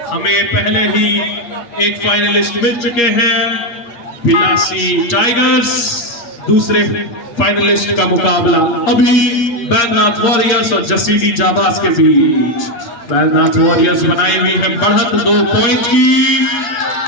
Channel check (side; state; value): right; late; 8.5 ms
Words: हमें पहले ही एक फाइनलिस्ट मिल चुके हैं, बिलासी टाइगर्स। दूसरे फाइनलिस्ट का मुकाबला अभी मैननाथ वॉरियर्स और जसीडी जाबाज के बीच। बैजनाथ वॉरियर्स बनाई हुई है बढ़त 2 पॉइंट की।